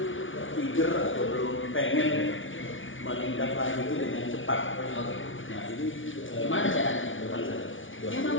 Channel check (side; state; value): right; late; 0.57 ms